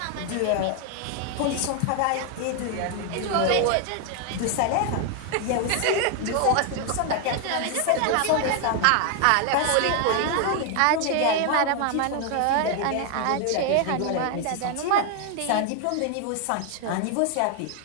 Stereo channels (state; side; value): different; both; correlation 0.00